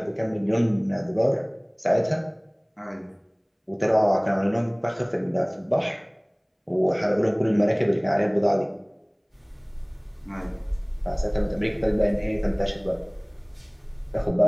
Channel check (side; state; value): both; identical; correlation 1.00